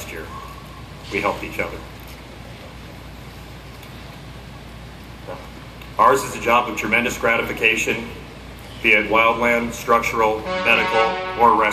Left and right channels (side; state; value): both; identical; correlation 1.00